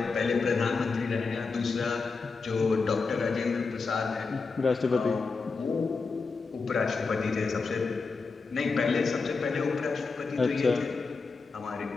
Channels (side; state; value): right; quieter; 4.5 dB